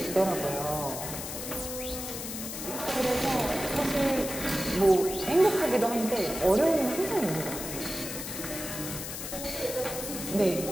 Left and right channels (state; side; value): noise; left; hiss, 7 dB below the sound